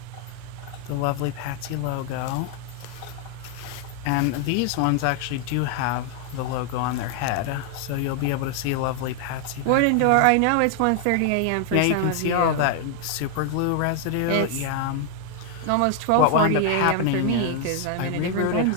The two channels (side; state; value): both; different; correlation 0.00